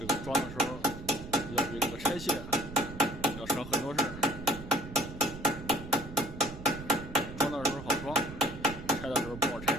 个装的时候要比这个拆卸要省很多事儿。装的时候好装，拆的时候不好拆。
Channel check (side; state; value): right; noise; rumble, 12 dB below the sound